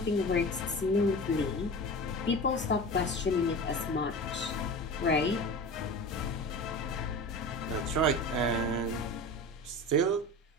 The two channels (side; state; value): both; normal; correlation 0.31